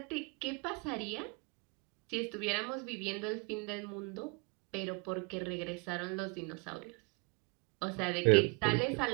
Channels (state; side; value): quieter; left; 30.4 dB